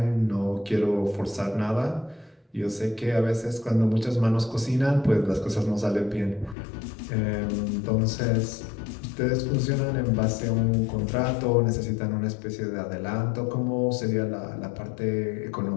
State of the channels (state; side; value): drops out; right; at 6.6 s